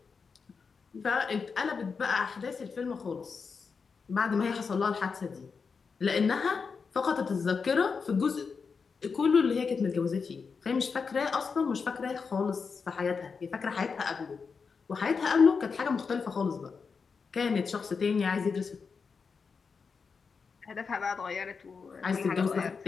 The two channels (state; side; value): quieter; right; 5.3 dB